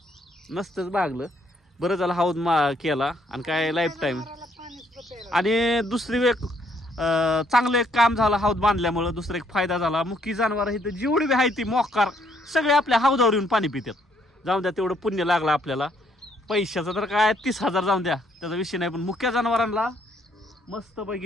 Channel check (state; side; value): normal; both; correlation 0.69